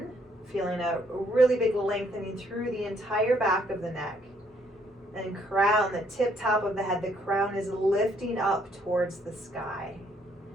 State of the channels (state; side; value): normal; both; correlation 0.68